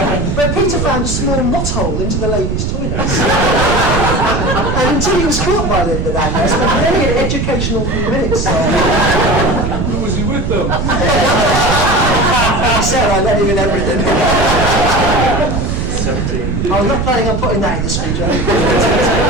But Peter found a small knot hole into the ladies' toilets. And until he was caught by Linda down there, spent many an educational few minutes. Who was he with them? He said I let him in everything. I was not planning on putting that in the speech.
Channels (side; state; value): right; noise; rumble, 1 dB below the sound